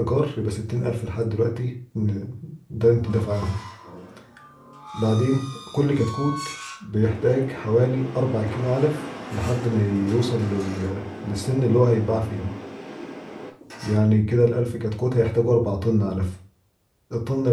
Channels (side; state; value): both; identical; correlation 1.00